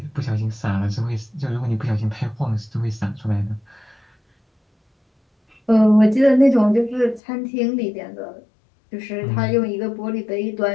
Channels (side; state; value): right; drops out; at 7.2 s